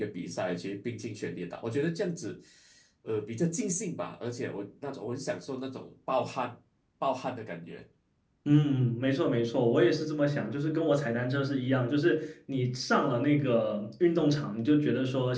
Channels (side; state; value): both; identical; correlation 1.00